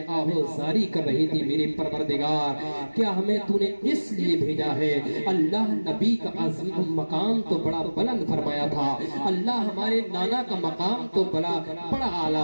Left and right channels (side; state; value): both; inverted; correlation -1.00